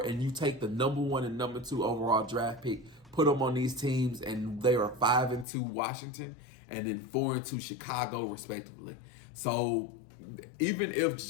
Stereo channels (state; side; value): drops out; right; at 5.5 s